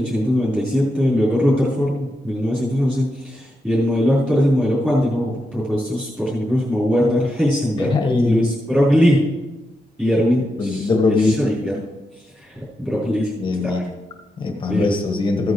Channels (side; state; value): both; normal; correlation 0.86